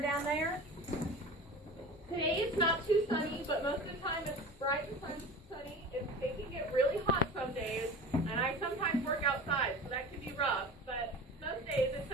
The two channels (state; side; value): normal; both; correlation 0.35